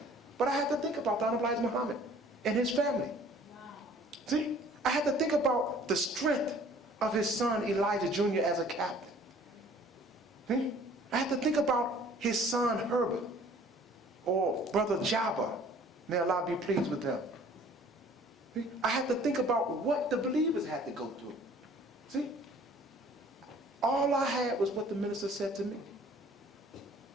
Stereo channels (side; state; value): both; normal; correlation 0.53